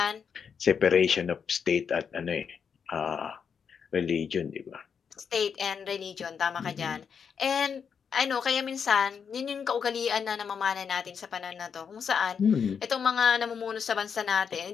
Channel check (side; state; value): right; quieter; 6.7 dB